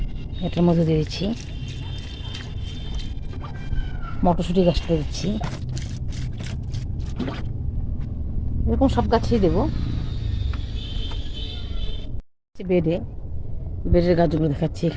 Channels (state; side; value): identical; both; correlation 1.00